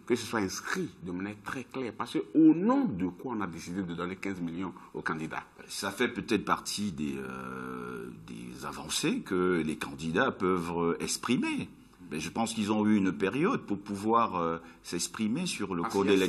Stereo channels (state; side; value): identical; both; correlation 1.00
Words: que ce soit inscrit de manière très claire? Parce qu'au nom de quoi on a décidé de donner 15 millions aux candidats? Ça fait peut-être partie des avancées que les candidats peuvent exprimer. Mais je pense qu'ils ont eu une période pour pouvoir s'exprimer sur le code